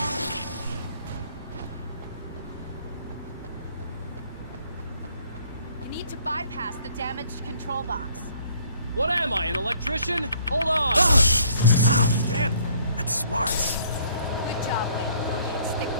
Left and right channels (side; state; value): both; inverted; correlation -0.61